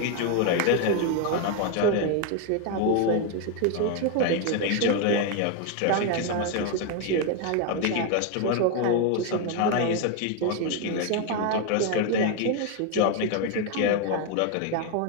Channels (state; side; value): different; both; correlation 0.01